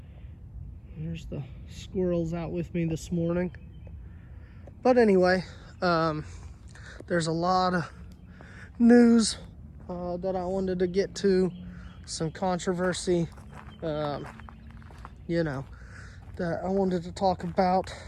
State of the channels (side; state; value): both; identical; correlation 1.00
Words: There's the squirrels out with me this morning. But anyway, there's a lot of news that I wanted to get to, some controversy, that I wanted to talk about.